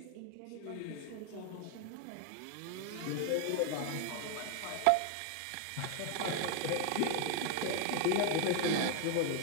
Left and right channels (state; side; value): different; both; correlation 0.00